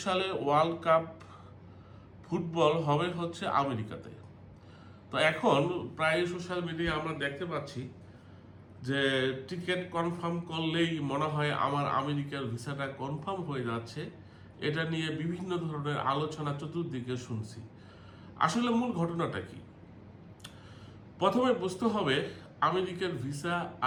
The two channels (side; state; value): both; identical; correlation 1.00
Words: সালে ওয়ার্ল্ড কাপ ফুটবল হবে হচ্ছে আমেরিকাতে। তো এখন প্রায় সোশ্যাল মিডিয়ায় আমরা দেখতে পাচ্ছি যে টিকিট কনফার্ম করলেই মনে হয় আমার আমেরিকার ভিসাটা কনফার্ম হয়ে যাচ্ছে। এটা নিয়ে বিভিন্ন ধরনের আলোচনা চতুর্দিকে শুনছি। আসলে মূল ঘটনাটা কি? প্রথমে বুঝতে হবে আমেরিকার ভিসা